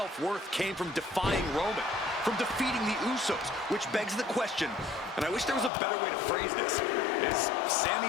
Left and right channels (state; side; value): drops out; right; at 5.7 s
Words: came from defying Roman, from defeating the Usos, which begs the question, and I wish there was a better way to phrase this. Is